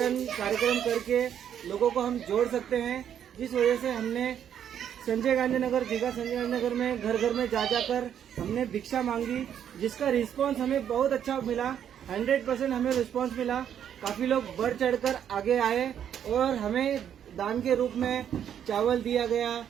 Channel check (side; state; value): left; quieter; 9.3 dB